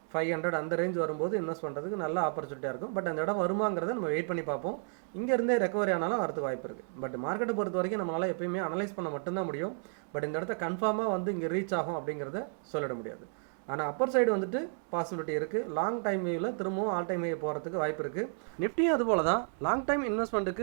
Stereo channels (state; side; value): silent; left; 56 dB below the other